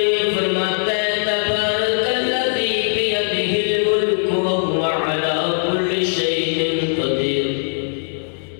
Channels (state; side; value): silent; right; digital silence